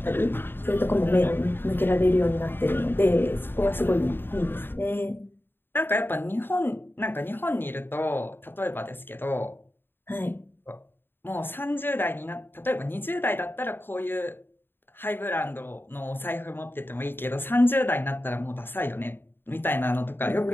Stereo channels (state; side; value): late; right; 0.10 ms